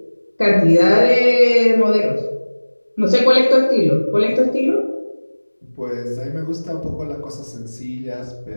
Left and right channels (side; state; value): both; inverted; correlation -1.00